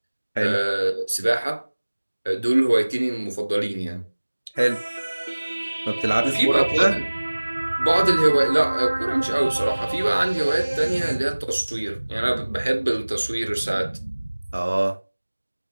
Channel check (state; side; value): inverted; both; correlation -1.00